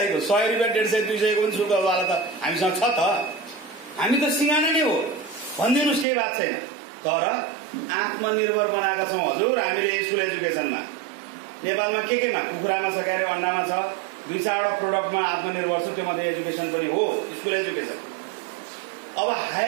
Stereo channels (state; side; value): drops out; left; at 6.1 s